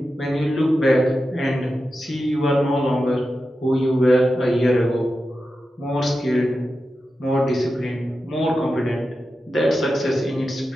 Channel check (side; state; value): both; normal; correlation 0.91